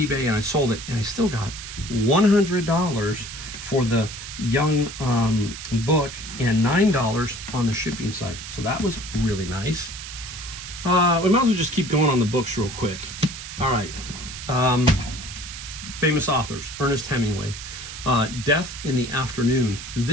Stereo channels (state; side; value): noise; right; hiss, 10 dB below the sound